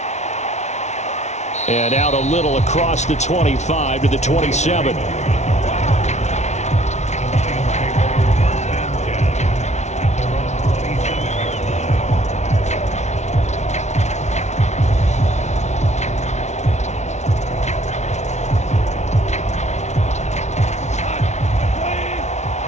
And out a little across the 25 to the 27.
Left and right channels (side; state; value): right; late; 0.32 ms